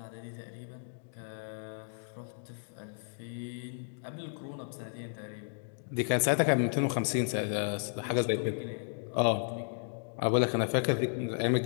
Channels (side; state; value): right; silent; digital silence